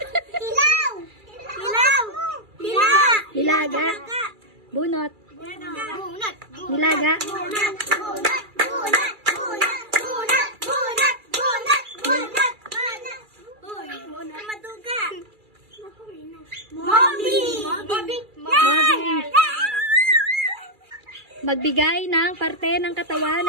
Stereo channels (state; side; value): late; left; 2.3 ms